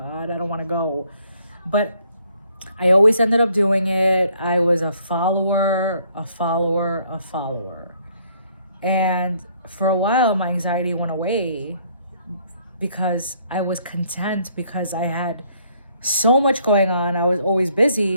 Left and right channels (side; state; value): both; inverted; correlation -0.65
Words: I don't want to go. But I always ended up doing it. I was a follower. And for a while, my anxiety went away because I was content, because I had so much going on. I was always